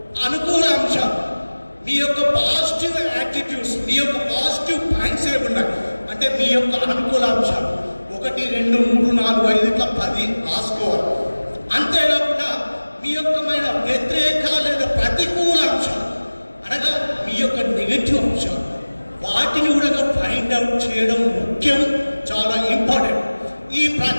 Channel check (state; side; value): inverted; both; correlation -1.00